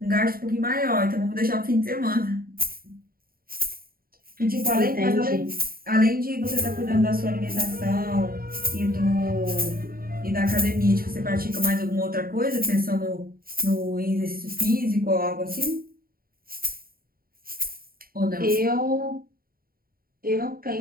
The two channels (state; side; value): late; left; 0.43 ms